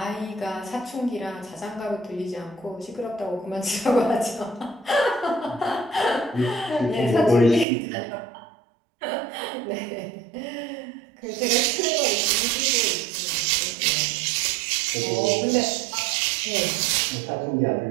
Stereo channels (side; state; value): left; drops out; at 7.7 s